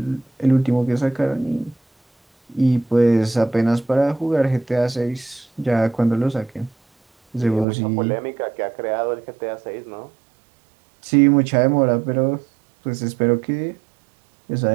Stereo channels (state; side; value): drops out; left; at 7.7 s